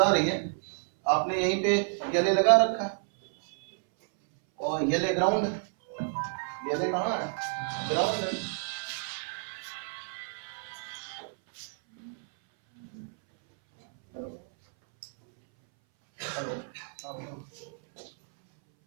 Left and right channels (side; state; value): left; silent; 58 dB below the other